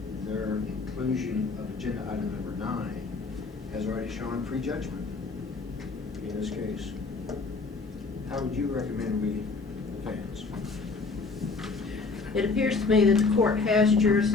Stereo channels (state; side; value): quieter; right; 4.1 dB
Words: their inclusion of agenda item number 9, has already shown prejudgment in this case. How would you recommend we advance? It appears to me that the court has